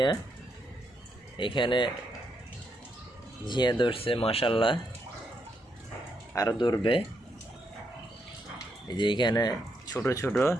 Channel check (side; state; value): both; normal; correlation 0.80